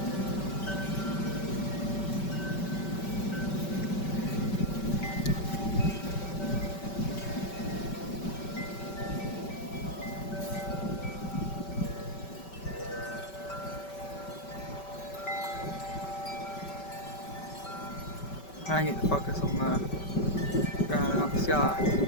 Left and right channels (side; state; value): right; late; 5.2 ms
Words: I get to focus on the ground and not the sky.